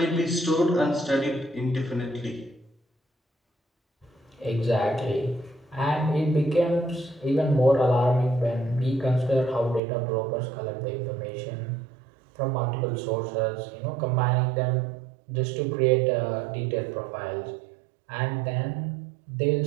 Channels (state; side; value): drops out; left; at 9.8 s